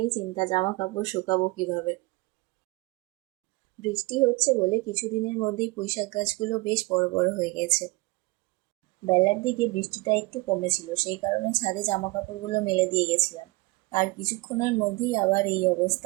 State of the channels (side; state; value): left; quieter; 24.3 dB